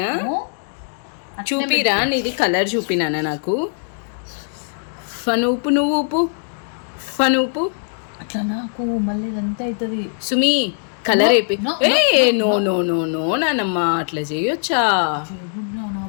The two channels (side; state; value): right; silent; digital silence